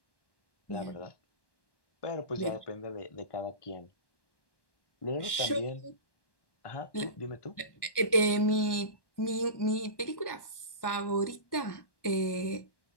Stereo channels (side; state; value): right; late; 1.1 ms